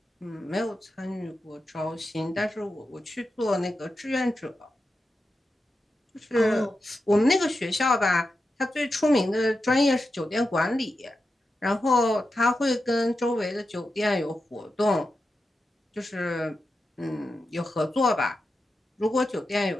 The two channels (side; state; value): both; normal; correlation 0.89